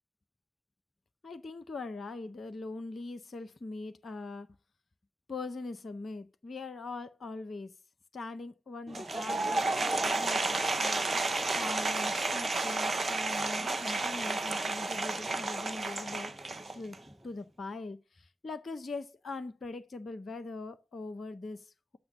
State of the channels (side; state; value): both; normal; correlation 0.86